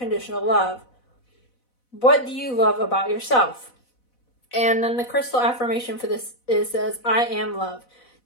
love? What do you love about yourself? And then the crystal affirmation for this says, I am love.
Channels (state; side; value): late; right; 4.0 ms